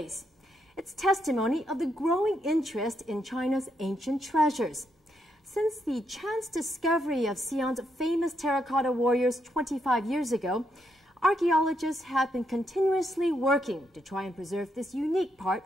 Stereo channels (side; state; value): both; normal; correlation 0.78